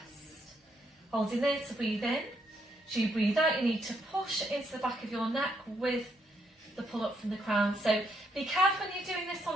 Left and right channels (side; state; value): both; normal; correlation 0.75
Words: Holding there to breathe in. So you breathe out, you need to push into the back of your neck with the pull up from the crown. So be careful when you're doing this one